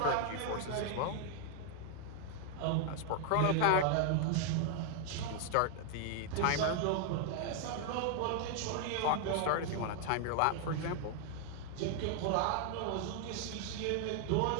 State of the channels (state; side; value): different; both; correlation 0.00